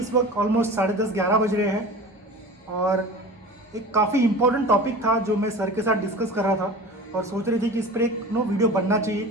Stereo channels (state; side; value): normal; both; correlation 0.36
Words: वक्त ऑलमोस्ट 10:30-11 बज रहे हैं और एक काफ़ी इम्पोर्टेंट टॉपिक था जो मैं सर के साथ डिस्कस कर रहा था और सोच रही थी कि इस पर एक वीडियो बनना चाहिए